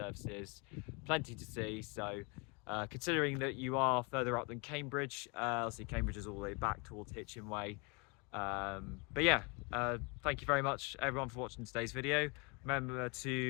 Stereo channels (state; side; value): quieter; right; 31.0 dB